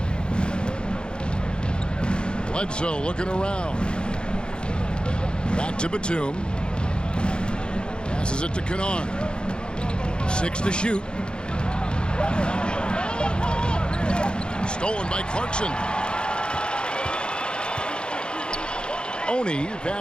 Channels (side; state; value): right; late; 0.050 ms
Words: Bledsoe looking around. Back to Batum. Passes it to Kennard. 6 to shoot. Stolen by Clarkson. Oni